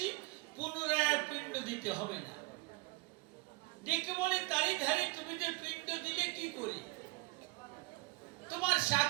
পুনরায় আর পিণ্ড দিতে হবে না। ডেকে বলে, তারই ধারে তুমি যে পিণ্ড দিলে কি করে? তোমার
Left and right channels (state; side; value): quieter; left; 24.3 dB